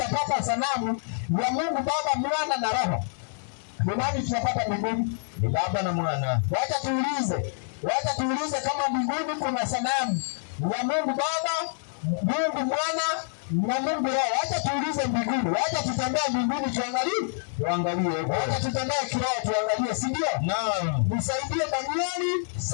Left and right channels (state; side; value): silent; right; digital silence